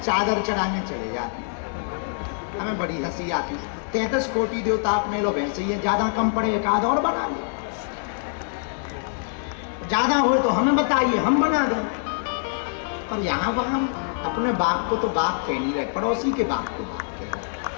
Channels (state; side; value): silent; right; 62 dB below the other